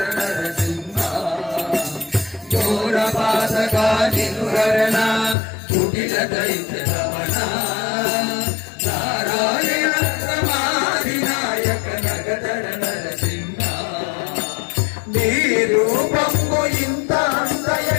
నరసింహ ఘోర బాధగా తిరుహరణ కుటిల దైత్య గమన నారాయణ రమాది నాయక జగదర నరసింహ నీ రూపము ఇంత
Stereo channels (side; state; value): right; drops out; at 5.4 s